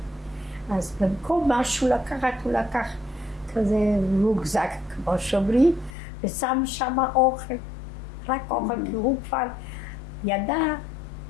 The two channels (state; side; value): drops out; right; at 5.9 s